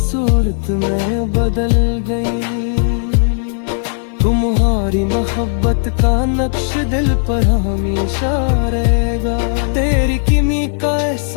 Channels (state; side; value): silent; right; 61 dB below the other